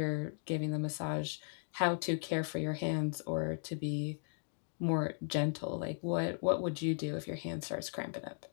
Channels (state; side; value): silent; right; digital silence